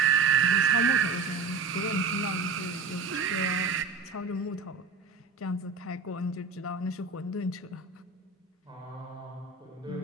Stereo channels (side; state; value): left; quieter; 5.2 dB